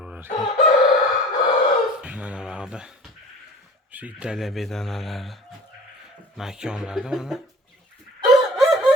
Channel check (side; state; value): both; normal; correlation 0.43